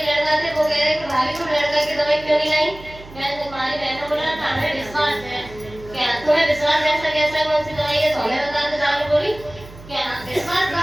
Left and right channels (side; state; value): right; noise; hum, 18 dB below the sound